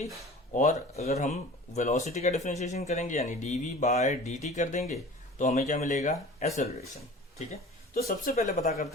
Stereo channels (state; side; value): normal; both; correlation 0.41